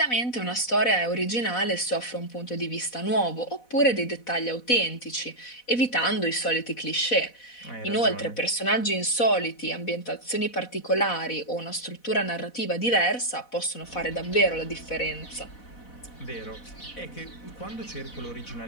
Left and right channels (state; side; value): late; right; 4.1 ms